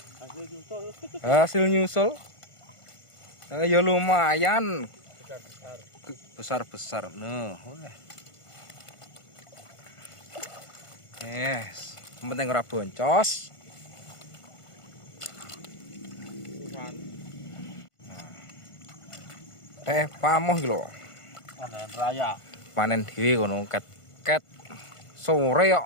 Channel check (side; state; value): right; late; 1.5 ms